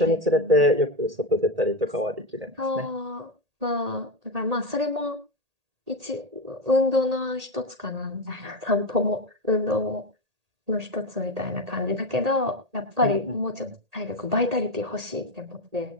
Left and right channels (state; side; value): late; left; 1.8 ms